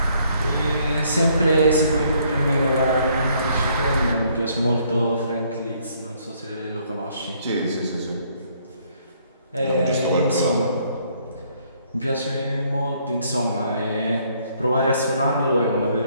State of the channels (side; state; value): both; inverted; correlation -0.66